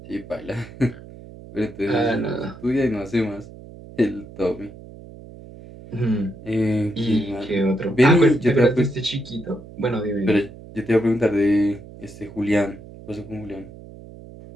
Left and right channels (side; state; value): right; noise; hum, 17 dB below the sound